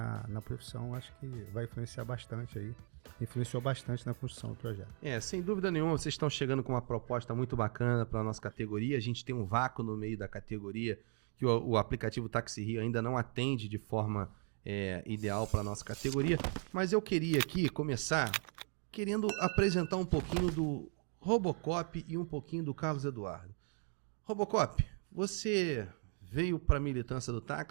na profissão, acho que vai influenciar bastante aí. Influenciou bastante na construção do projeto. Sem dúvida nenhuma, vocês estão chegando com uma proposta muito bacana para a nossa categoria. A gente tem um vácuo no meio da categoria que o aplicativo Táxi Rio ainda não atende de forma ideal para a nossa categoria. Mas eu queria aqui começar querendo apresentar um pouquinho do Robocop e um pouquinho do Carlos Eduardo. Robocop, você veio para a militância do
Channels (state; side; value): quieter; left; 39.5 dB